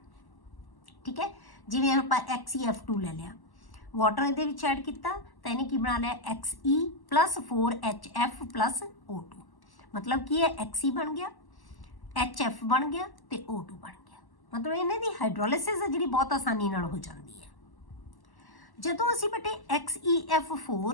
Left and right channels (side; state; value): right; late; 1.1 ms